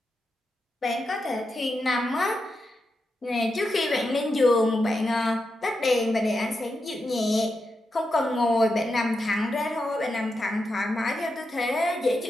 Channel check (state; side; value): normal; both; correlation 0.87